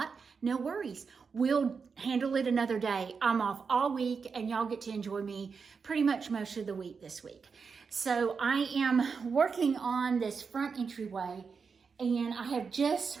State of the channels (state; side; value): quieter; left; 5.5 dB